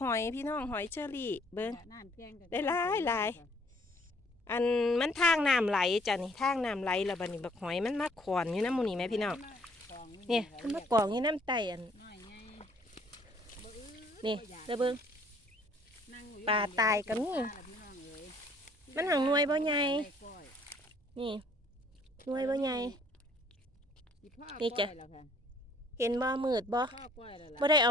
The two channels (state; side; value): normal; both; correlation 0.61